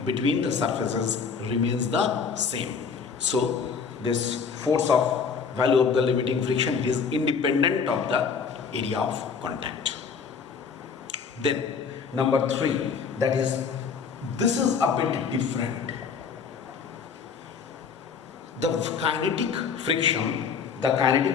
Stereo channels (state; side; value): quieter; right; 5.9 dB